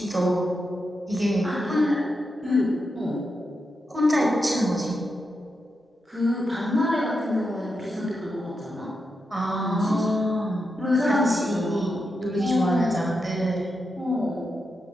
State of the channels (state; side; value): normal; both; correlation 0.86